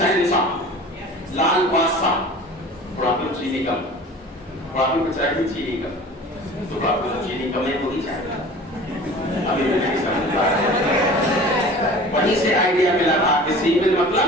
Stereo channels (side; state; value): both; normal; correlation 0.42